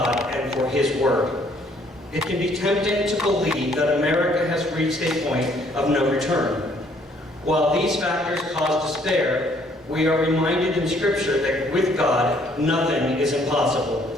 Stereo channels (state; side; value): normal; both; correlation 0.64